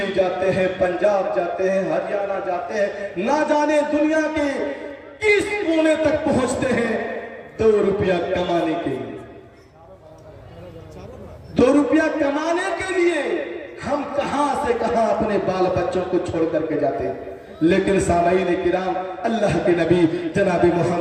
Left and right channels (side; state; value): both; identical; correlation 1.00